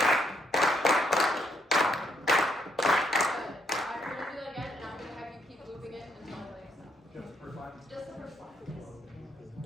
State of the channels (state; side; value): normal; both; correlation 0.73